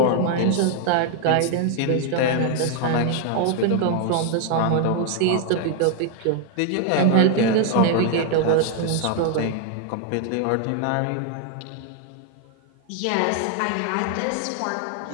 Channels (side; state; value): both; different; correlation 0.00